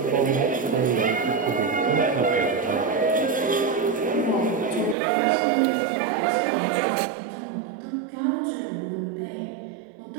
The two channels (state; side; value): drops out; left; at 5.0 s